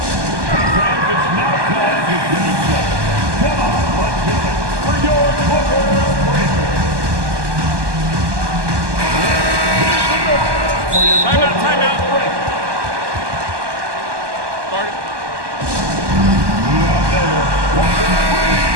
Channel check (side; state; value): left; late; 1.2 ms